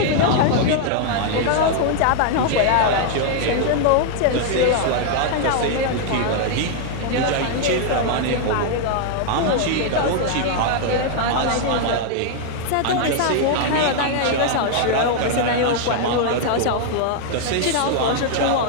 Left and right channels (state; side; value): different; both; correlation 0.00